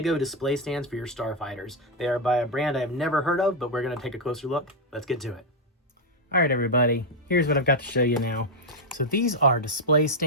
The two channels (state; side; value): normal; both; correlation 0.02